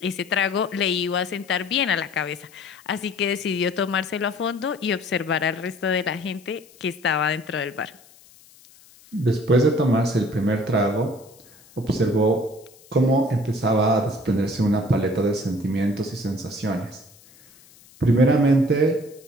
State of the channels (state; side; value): noise; left; hiss, 26 dB below the sound